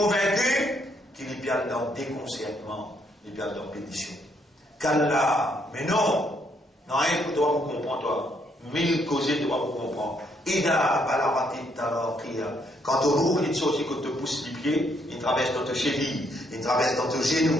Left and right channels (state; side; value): normal; both; correlation 0.72